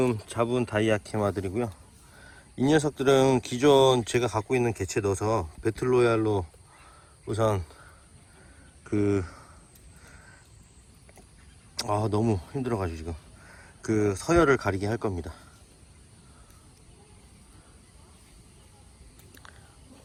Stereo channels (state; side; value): identical; both; correlation 1.00